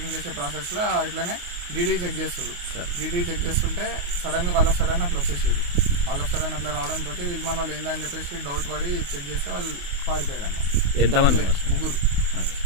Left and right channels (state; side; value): late; left; 28 ms